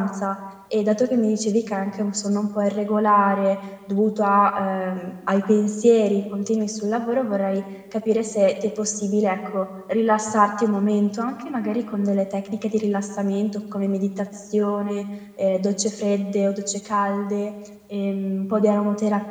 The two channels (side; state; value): both; identical; correlation 1.00